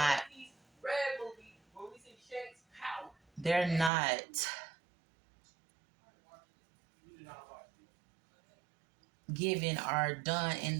given or done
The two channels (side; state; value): left; drops out; at 3.9 s